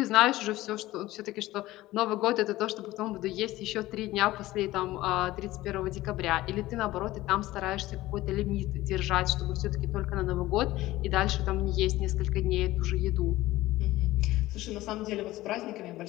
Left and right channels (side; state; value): right; quieter; 17.1 dB